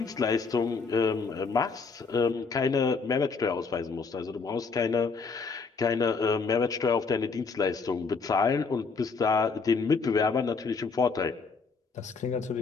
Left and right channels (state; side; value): quieter; right; 4.7 dB